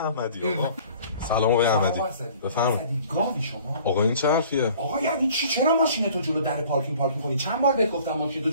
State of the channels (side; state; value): both; inverted; correlation -0.51